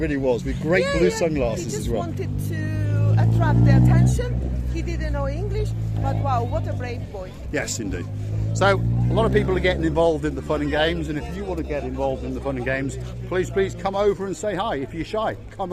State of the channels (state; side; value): identical; both; correlation 1.00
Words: was, with great blue sunglasses as well. He just wanted to attract their attention. He didn't know English, but wow, what a brave boy. Yes, indeed. So, a lot of people are getting involved in the fun and games, and if you want to get involved in the fun and games, please come over and say hi. If you're shy, come